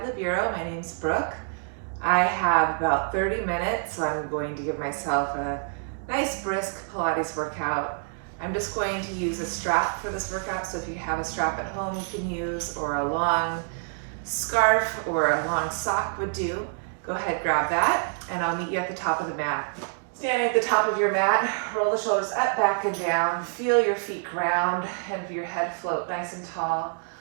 the Bureau. My name's Brooke. I have about 30 minutes, so I'm going to give myself a nice brisk Pilates workout. I'm just going to use a strap for this workout, so if you have a strap at home you can use, or a long scarf or a long sock would do. Go ahead, grab that, and I'll meet you at the top of the mat. Standing at the top of your mat, roll the shoulders up, back, and down. Feel your feet ground and your head float nice and tall.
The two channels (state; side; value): silent; left; 60 dB below the other